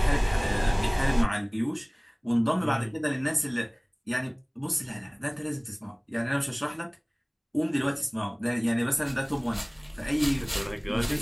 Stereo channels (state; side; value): identical; both; correlation 1.00